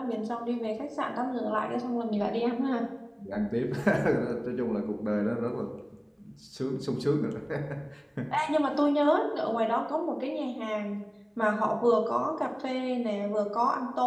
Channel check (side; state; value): both; identical; correlation 1.00